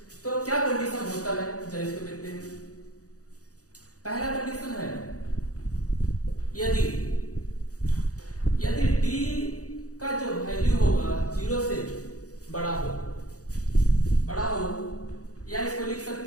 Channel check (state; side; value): late; right; 0.66 ms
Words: तो क्या कंडीशन होता है, जरा इसको देखते हैं। पहला कंडीशन है यदि d का जो वैल्यू होगा 0 से बड़ा हो या इसको लिख